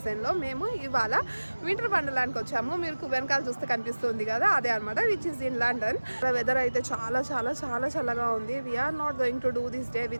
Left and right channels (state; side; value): inverted; both; correlation -1.00